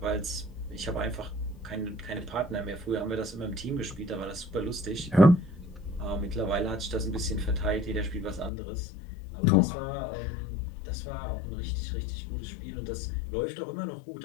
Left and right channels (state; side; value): drops out; right; at 8.5 s